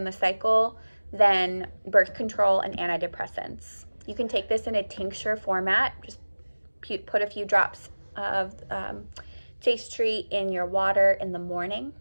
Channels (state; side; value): inverted; both; correlation -1.00